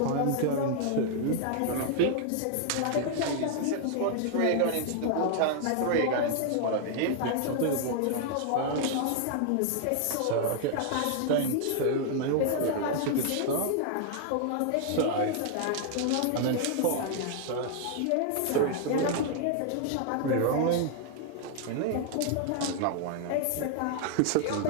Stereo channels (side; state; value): both; different; correlation 0.00